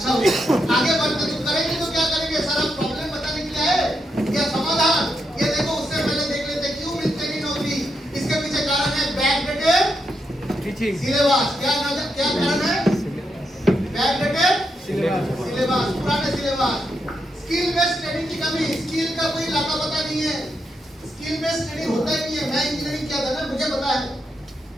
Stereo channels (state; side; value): normal; both; correlation 0.82